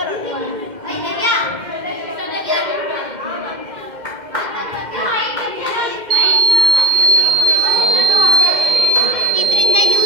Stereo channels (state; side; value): late; left; 2.1 ms